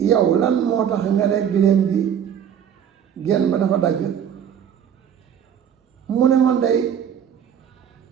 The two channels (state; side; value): quieter; left; 8.8 dB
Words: yow lan moo tax nga ne giléem bi genn ba dafa dagg mu ne man day